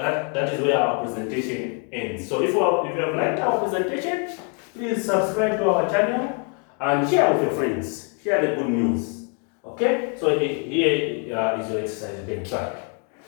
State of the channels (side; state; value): right; quieter; 39.5 dB